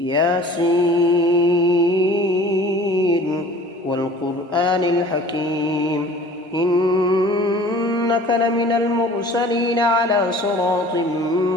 والقرآن الحكيم إنك لمن المرسلين على صراط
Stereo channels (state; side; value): normal; both; correlation 0.47